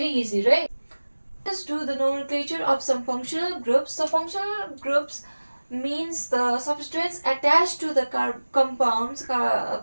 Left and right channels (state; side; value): inverted; both; correlation -1.00